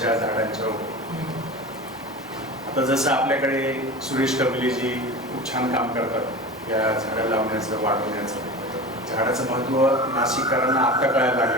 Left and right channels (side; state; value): both; normal; correlation 0.31